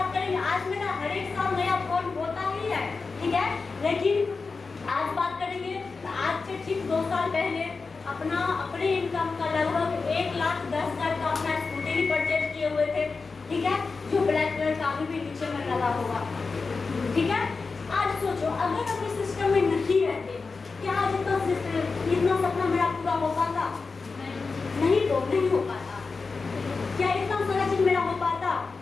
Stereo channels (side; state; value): right; quieter; 4.4 dB